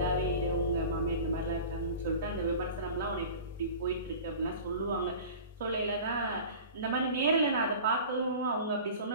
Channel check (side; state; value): both; inverted; correlation -0.38